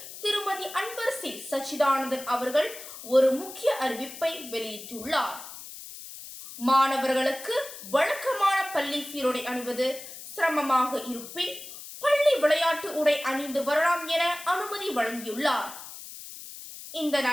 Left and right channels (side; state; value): left; noise; hiss, 13 dB below the sound